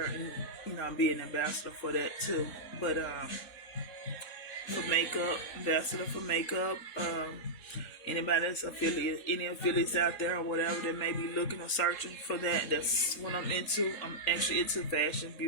and be an ambassador for that too. But for makeup, ambassador for makeup. Anybody that's any affiliates out there or whatever that may be looking or searching for that, that's what I'm into. I'm actually into fashion,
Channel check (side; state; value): right; late; 2.8 ms